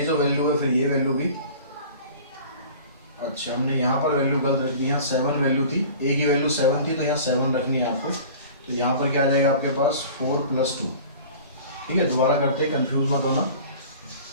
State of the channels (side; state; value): both; inverted; correlation -0.42